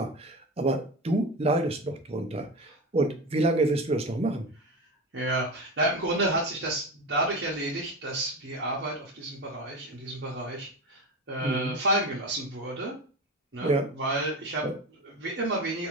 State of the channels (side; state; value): both; normal; correlation 0.24